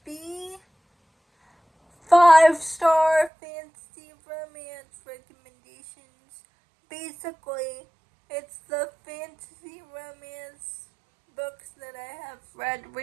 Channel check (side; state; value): left; drops out; at 3.3 s